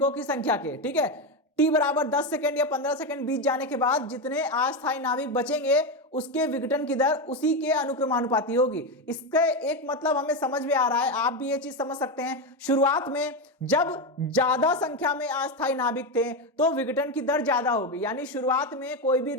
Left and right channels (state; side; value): normal; both; correlation 0.12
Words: की संख्या के। ठीक है, t बराबर 10 सेकंड या 15 सेकंड बीत जाने के बाद जितने अस्थायी नाभिक बचेंगे उसके विघटन की दर उसी के अनुक्रमानुपाती होगी। इसका एक मतलब हमें समझ में आ रहा है, आप भी ये चीज समझ सकते हैं। शुरुआत में जब ज्यादा संख्या में अस्थायी नाभिक थे तो विघटन की दर ज्यादा होगी, यानी शुरुआत में कोई भी